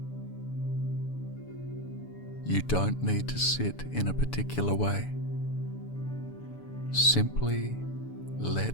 You don't need to sit in a particular way. Simply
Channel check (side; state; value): right; late; 7.0 ms